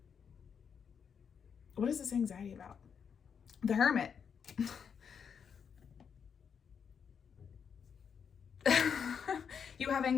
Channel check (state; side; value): quieter; right; 6.9 dB